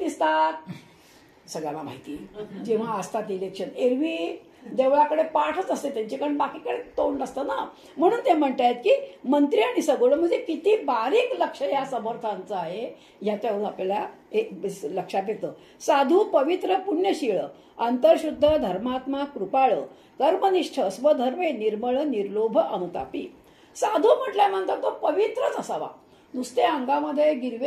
सगळ्यांना माहिती, जेव्हा असतात इलेक्शन. एरवी देवळाकडे पाठच असते त्यांची, कारण बाकीकडे तोंड नसतं ना. म्हणून ते म्हणतायत की मंत्री आणि सगुण, म्हणजे किती बारीक लक्ष या समर्थांचं आहे याच्यावरून आपल्याला लक्षात येतं. साधू, पवित्र, पुण्यशीळ, अंतर्शुद्ध, धर्मात्मा, कृपाळ, कर्मनिष्ठ, स्वधर्मे, निर्मळ, निर्लोभ, अनुतापी. साधू म्हटल्यानंतर तो पवित्रच असावा. नुसते अंगामध्ये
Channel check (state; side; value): identical; both; correlation 1.00